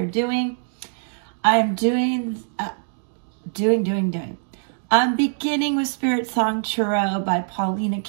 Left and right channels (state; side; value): silent; left; digital silence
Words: doing. I'm doing. I'm beginning with Spiritsong Tarot by Paulina